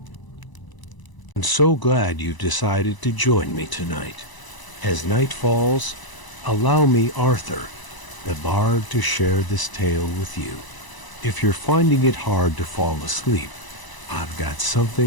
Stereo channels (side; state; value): right; late; 1.0 ms